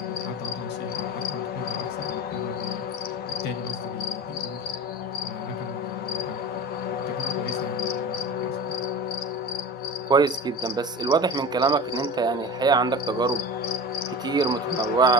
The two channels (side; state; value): both; normal; correlation 0.32